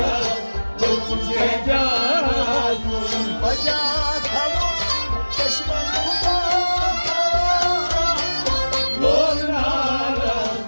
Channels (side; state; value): both; inverted; correlation -1.00